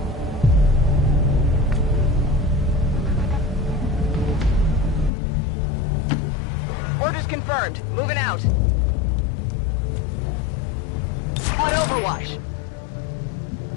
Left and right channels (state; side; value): drops out; right; at 5.1 s